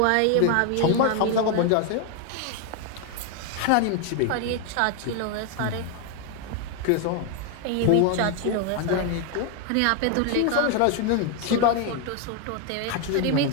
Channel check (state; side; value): different; both; correlation 0.01